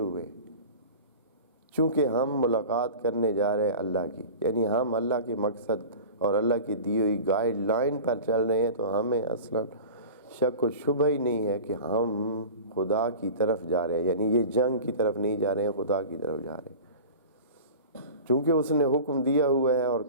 چونکہ ہم ملاقات کرنے جا رہے ہیں اللہ کی. یعنی ہم اللہ کے مقصد اور اللہ کی دی ہوئی گائیڈ لائن پر چل رہے ہیں، تو ہمیں اصلا شک و شبہ ہی نہیں ہے کہ ہم خدا کی طرف جا رہے ہیں. یعنی یہ جنگ کی طرف نہیں جا رہے ہیں، خدا کی طرف جا رہے ہیں. چونکہ اس نے حکم دیا ہوا ہے اور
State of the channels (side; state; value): both; inverted; correlation -0.36